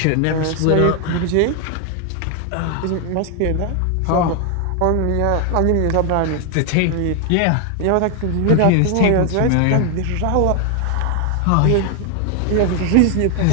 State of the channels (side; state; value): both; different; correlation 0.00